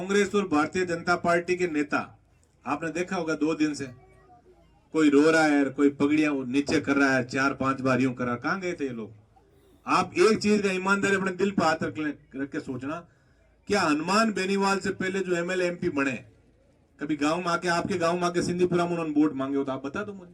और भारतीय जनता पार्टी के नेता आपने देखा होगा 2 दिन से कोई रो रहा है, कोई पगड़ियां नीचे कर रहा है, 4-5 बार यूं कर रहा है। कहां गए थे ये लोग? आप एक चीज का ईमानदारी अपने दिल पर हाथ रख के सोचना, क्या हनुमान बेनीवाल से पहले जो एमएलए एमपी बने कभी गांव में आके, आपके गांव में आके सिंधीपुरा में उन्होंने वोट मांगे हो तो आप बता दो मुझे।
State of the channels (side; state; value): both; identical; correlation 1.00